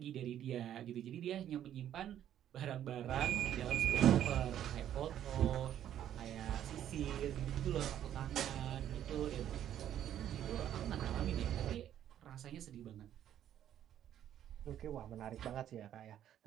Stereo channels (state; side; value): quieter; left; 10.9 dB